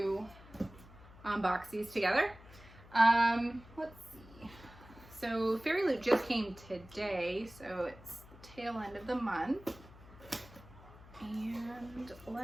unbox these together. Let's see. So Fairyloot just came today, so it's the tail end of the month. And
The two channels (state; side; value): noise; left; hum, 20 dB below the sound